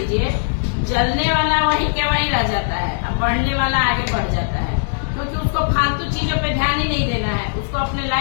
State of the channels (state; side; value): silent; right; 63 dB below the other